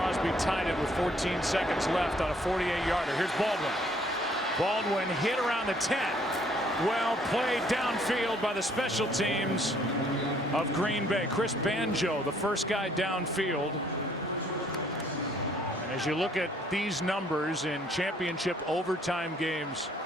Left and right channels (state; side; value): normal; both; correlation 0.63